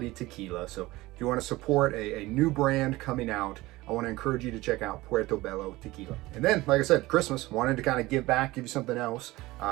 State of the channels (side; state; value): left; quieter; 19.4 dB